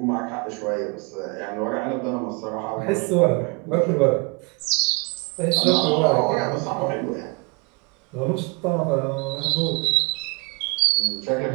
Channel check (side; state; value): left; quieter; 30.8 dB